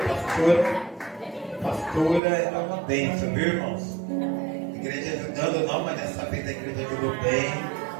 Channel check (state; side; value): drops out; left; at 2.2 s